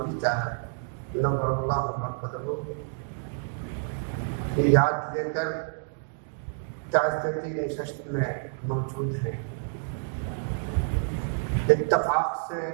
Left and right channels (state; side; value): silent; left; digital silence